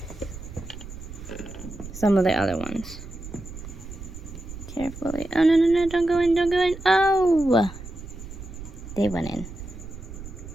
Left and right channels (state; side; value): noise; right; rumble, 12 dB below the sound